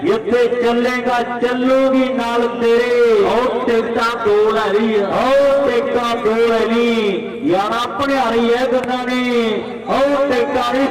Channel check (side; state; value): both; identical; correlation 1.00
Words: इतने चलेगा चलूगी नाल तेरे और टिकटा 2 लै रही है और टिकटा 2 लै ली यार अपने आ रही है गन्ना ने और टिकटा